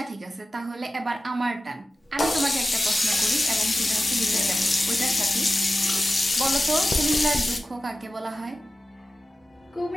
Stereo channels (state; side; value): normal; both; correlation 0.94